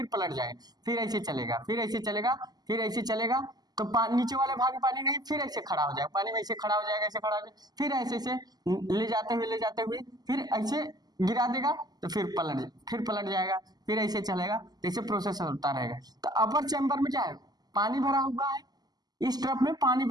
पलट जाएगा, फिर ऐसे चलेगा, फिर ऐसे चलेगा, फिर ऐसे चलेगा, तो नीचे वाले भाग में पानी नहीं, फिर ऐसे खड़ा हो जाएगा, पानी में ऐसे खड़ा हो जाएगा, ऐसे खड़ा हो जाएगा, फिर ऐसे ले जाते हुए फिर ऐसे गिरा देगा, तो फिर पलट जाएगा, फिर ऐसे चलेगा, तो ऐसे प्रोसेस होता रहेगा। तो अपर चैम्बर में क्या है, पानी भरा हुआ है, इस ट्रफ में पानी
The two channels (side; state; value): left; late; 0.20 ms